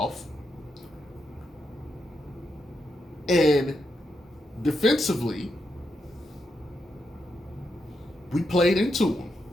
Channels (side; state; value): both; normal; correlation 0.83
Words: And defensively, we played into them.